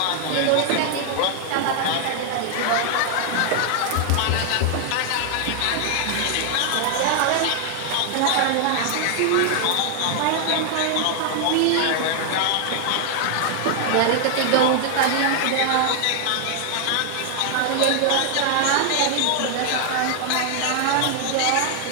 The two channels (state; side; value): different; both; correlation 0.00